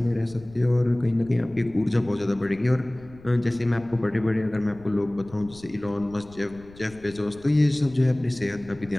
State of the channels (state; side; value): noise; left; rumble, 21 dB below the sound